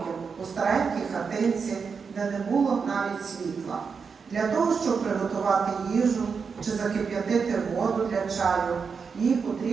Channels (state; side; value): quieter; left; 5.6 dB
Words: у старенькій хатинці, де не було навіть світла. Для того, щоб приготувати їжу чи закип'ятити воду для чаю, їй